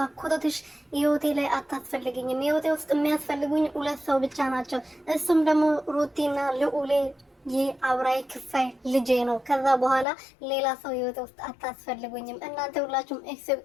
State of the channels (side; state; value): right; drops out; at 10.1 s